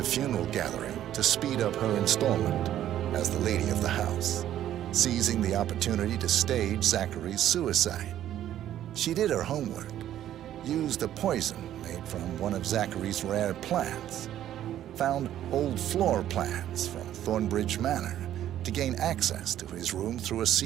funeral gathering to speed up her installment as the lady of the house, seizing the opportunity to stage Zachary's suicide. She did her homework, used a poison made from one of Zachary's rare plants, found old floor plans from Thornbridge Manor to gain access to his room through a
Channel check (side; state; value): left; quieter; 11.8 dB